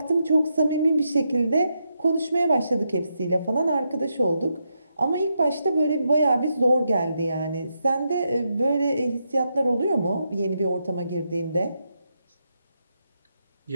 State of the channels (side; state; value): both; inverted; correlation -0.83